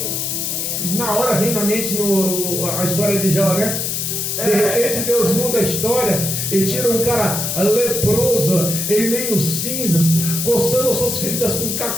fiel. Na hora vem na mente a história de Jó, né? De repente Deus muda a história e tira um cara leproso, em meio cinzas, coçando suas feridas com um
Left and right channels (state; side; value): noise; left; hiss, 1 dB below the sound